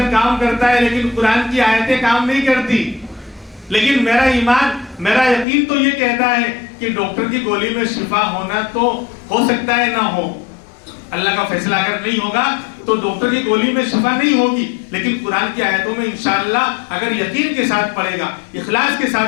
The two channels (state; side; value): drops out; right; at 5.5 s